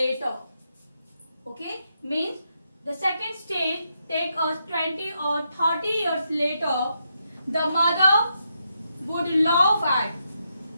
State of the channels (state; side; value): inverted; both; correlation -0.81